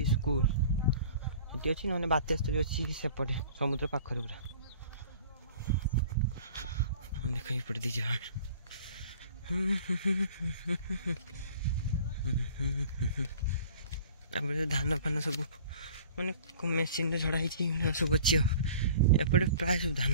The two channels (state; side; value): inverted; both; correlation -0.47